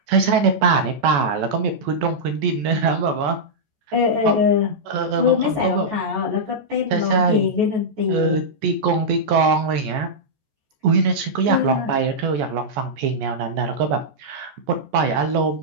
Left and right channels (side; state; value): left; late; 14 ms